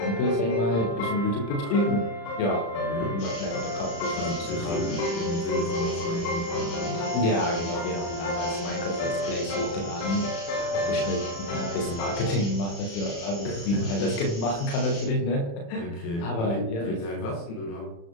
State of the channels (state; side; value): late; right; 35 ms